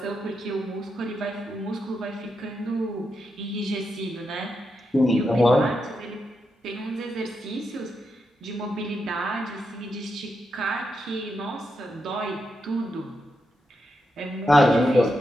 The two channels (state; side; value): normal; both; correlation 0.85